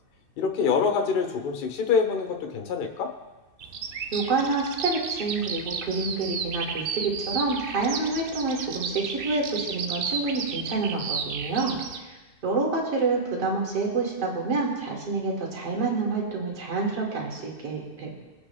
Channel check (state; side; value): late; right; 2.6 ms